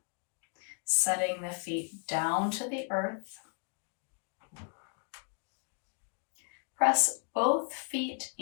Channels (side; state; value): right; quieter; 39.9 dB